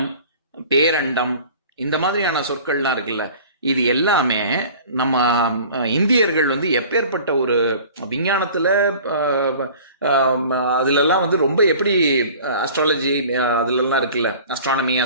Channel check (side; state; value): both; inverted; correlation -0.44